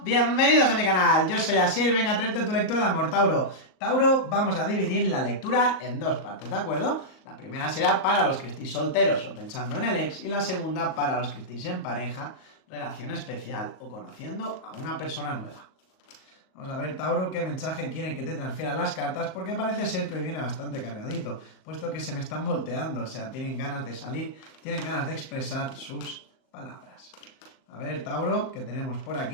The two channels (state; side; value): late; right; 38 ms